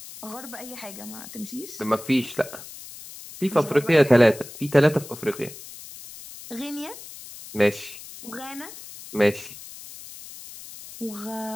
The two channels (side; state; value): left; noise; hiss, 15 dB below the sound